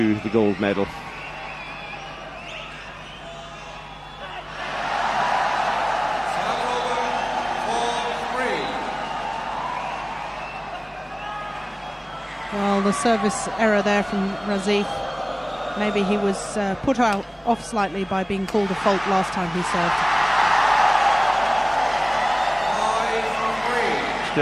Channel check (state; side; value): identical; both; correlation 1.00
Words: the gold medal. Well, the service error there from Razif. Maybe he was put off slightly by being called a fault last time he served.